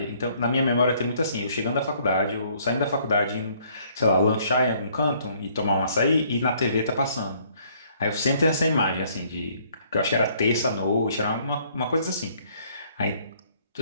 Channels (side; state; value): both; inverted; correlation -0.63